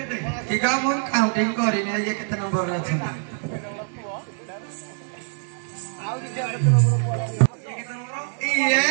କି କା ମୁଁ କାଉଣ୍ଟିଂ କରିନି ये କେତେ ନମ୍ବର ଅଛି ଆଉ କିଛି କେତେ ନମ୍ବର ये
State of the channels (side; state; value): left; silent; 58 dB below the other